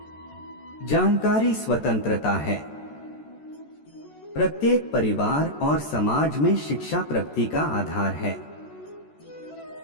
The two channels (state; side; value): late; right; 14 ms